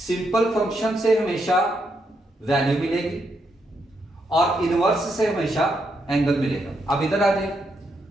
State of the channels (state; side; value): normal; both; correlation 0.79